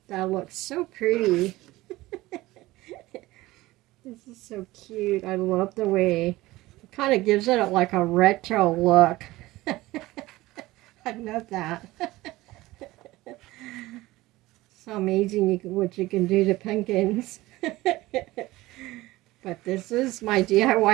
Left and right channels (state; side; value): quieter; left; 18.5 dB